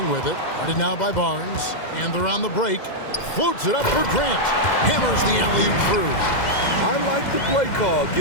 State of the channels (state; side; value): late; right; 2.1 ms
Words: with it. Guarded now by Barnes. And they're on the break. Floats it up for Grant. Hammers the alley-oop through. I like the play call.